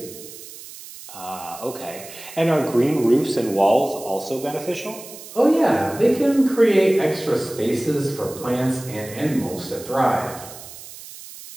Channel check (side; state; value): right; noise; hiss, 15 dB below the sound